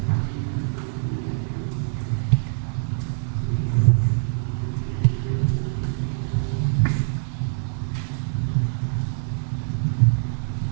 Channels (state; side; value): silent; left; digital silence